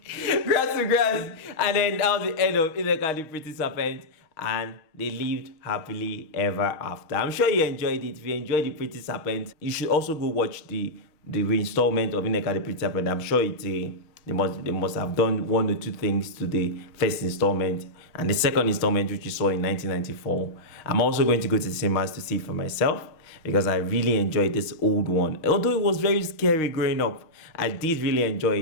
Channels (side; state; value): right; late; 6.3 ms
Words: grass to grass. And then that was the end of Nneka the Pretty Serpent. And they lived happily ever after. I'm sure you enjoyed it. If you enjoyed the Pretty Serpent, you should also go watch the reinstallment of Nneka the Pretty Serpent. I'm sure they must have done one or two things to the first installment and the second installment, which you saw in 1994. I'm also going to go to the cinemas to see it for myself because I really enjoyed this old one. Although it was very scary growing up, I did really